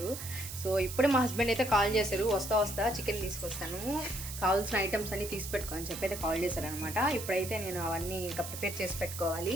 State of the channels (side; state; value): right; noise; hiss, 9 dB below the sound